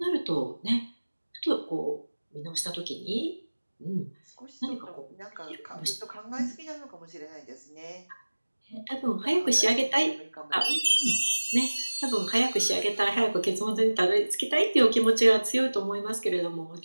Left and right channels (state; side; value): inverted; both; correlation -1.00